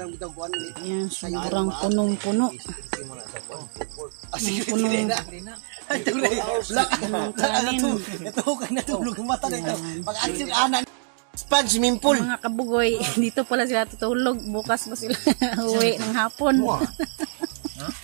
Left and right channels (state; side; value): silent; left; digital silence